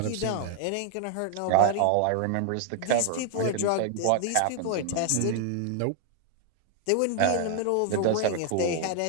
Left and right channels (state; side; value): different; both; correlation 0.00